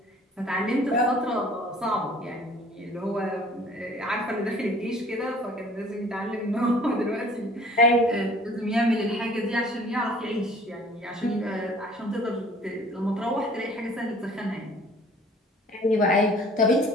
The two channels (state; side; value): normal; both; correlation 0.51